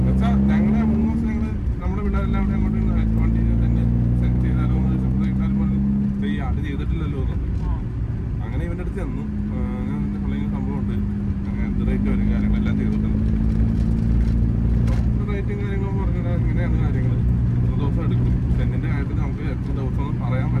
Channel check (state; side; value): identical; both; correlation 1.00